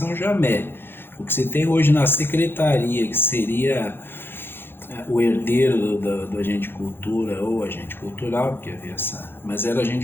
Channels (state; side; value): late; right; 0.10 ms